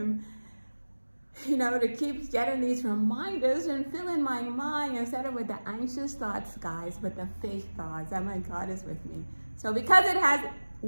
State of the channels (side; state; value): both; inverted; correlation -1.00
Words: you know, to keep getting these reminders and filling my mind instead of with the anxious thoughts, guys, with the faith thoughts that my God is with me. So because it has